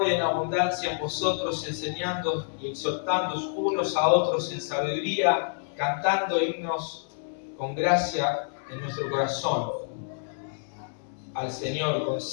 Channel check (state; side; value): silent; right; digital silence